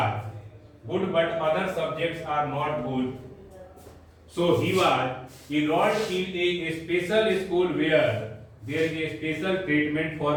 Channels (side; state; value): both; identical; correlation 1.00